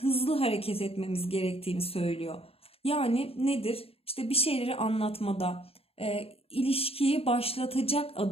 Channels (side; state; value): right; late; 0.28 ms